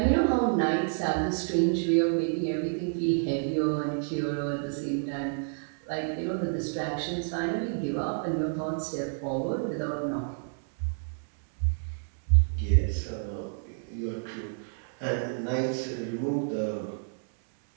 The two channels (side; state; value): left; silent; digital silence